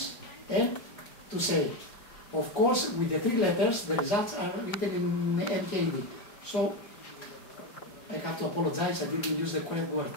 and to say. Of course, with the 3 letters, the results are written in MKD. So, I have to apologize, I didn't use the correct word.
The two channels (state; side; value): late; right; 4.8 ms